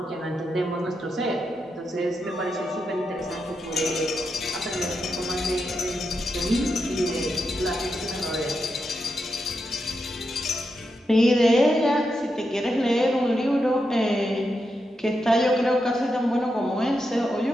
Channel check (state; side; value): normal; both; correlation 0.85